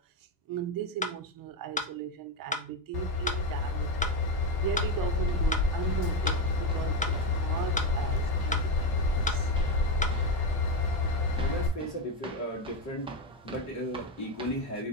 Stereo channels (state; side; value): normal; both; correlation 0.10